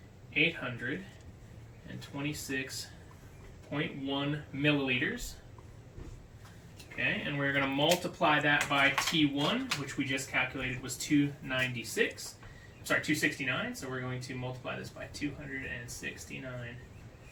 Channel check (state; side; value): identical; both; correlation 1.00